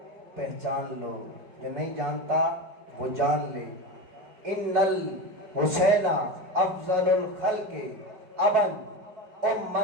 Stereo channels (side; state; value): left; late; 4.6 ms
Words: پہچان لو, جو نہیں جانتا وہ جان لے. ان الحسین افضل الخلق ابن